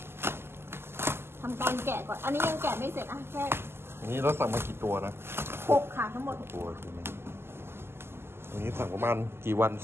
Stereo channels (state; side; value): late; left; 0.12 ms